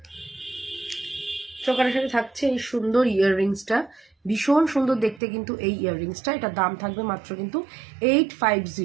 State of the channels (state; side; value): drops out; left; at 5.2 s